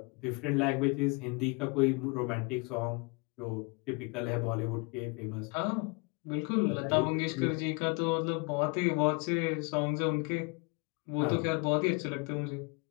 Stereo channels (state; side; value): quieter; right; 30.9 dB